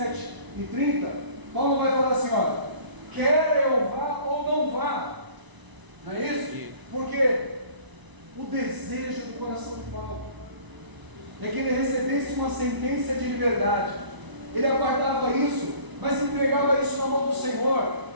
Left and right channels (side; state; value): left; late; 1.0 ms